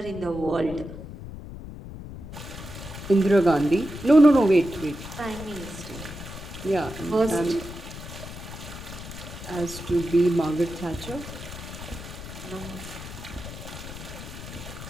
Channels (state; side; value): noise; left; rumble, 11 dB below the sound